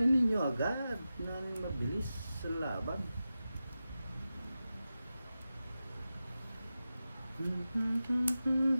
ninyo agad na mabilis sa laban.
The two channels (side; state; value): both; inverted; correlation -0.93